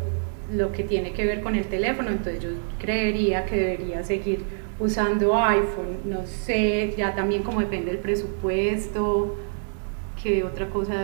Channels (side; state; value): left; silent; digital silence